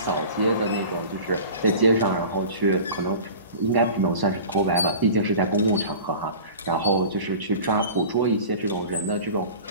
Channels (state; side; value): inverted; both; correlation -0.39